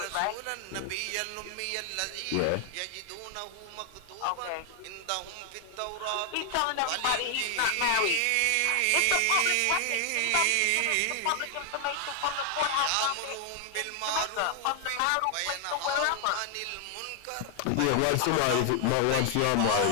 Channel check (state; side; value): different; both; correlation 0.00